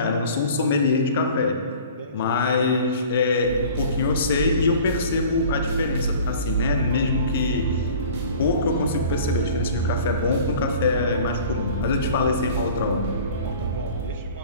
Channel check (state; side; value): inverted; both; correlation -0.45